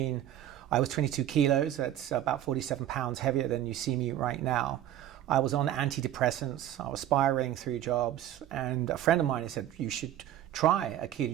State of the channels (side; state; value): left; quieter; 12.0 dB